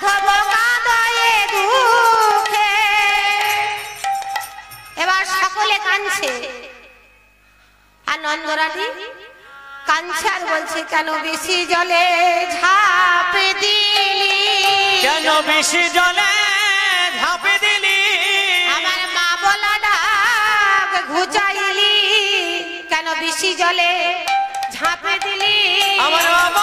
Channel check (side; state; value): both; identical; correlation 1.00